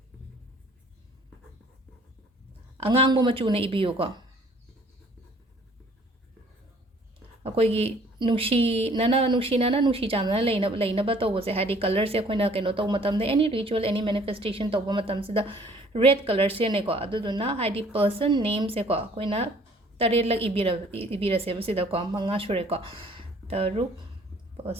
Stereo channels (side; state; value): both; normal; correlation 0.56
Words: ꯑꯉꯥꯡꯕ ꯃꯆꯨꯅ ꯏꯕꯤꯌꯨꯀꯣ ꯑꯩꯈꯣꯏꯒꯤ ꯅꯨꯡꯁꯤ ꯆꯥꯟꯅꯅ ꯂꯩꯅꯕ ꯇꯧꯕꯁꯦ ꯍꯥꯏꯗꯤ ꯀꯂꯔꯁꯦ ꯑꯩꯈꯣꯏꯅ ꯀꯩꯅꯣ ꯇꯧꯕ ꯃꯇꯝꯗ ꯑꯦꯅꯤ ꯔꯤꯆꯨꯋꯦꯜ ꯑꯦꯅꯤ ꯃꯦꯅꯤꯐꯦꯁꯇꯦꯁꯟ ꯇꯧꯕ ꯃꯇꯝꯁꯤꯗ ꯔꯦꯗ ꯀꯂꯔꯁꯦꯅꯦꯀꯣ ꯑꯗꯨꯗꯨꯅ ꯍꯥꯏꯗꯤ ꯄꯔꯁꯟ ꯅꯦꯝꯁꯦꯀꯣ ꯑꯩꯈꯣꯏꯅ 7ꯂꯛ ꯏꯕꯤꯔꯁꯦꯕ ꯁꯤꯗꯀꯣ 5 ꯁꯨꯔꯦꯀꯣ 6